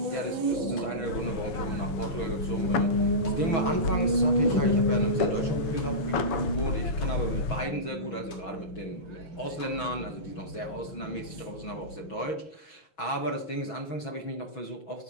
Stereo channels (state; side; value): late; right; 6.2 ms